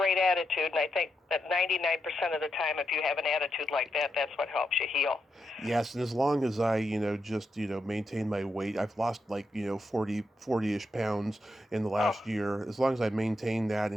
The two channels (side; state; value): both; normal; correlation 0.84